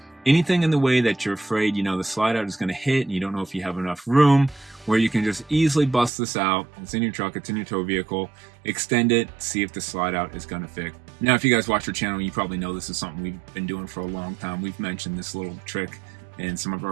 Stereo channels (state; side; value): drops out; left; at 6.1 s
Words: anything in the way that you're afraid, you know, the slide out is going to hit and you don't know if you have enough room, where you can just easily bust this out. It's in your truck, it's in your tow vehicle, extend it, see if the slide out is going to fit. Now, if you guys watch our channel, you probably know this is something we've been doing for a long time. We've mentioned this little trick in some of